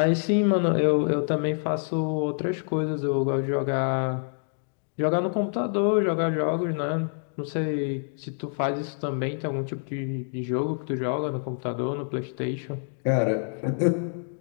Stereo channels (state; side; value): silent; right; digital silence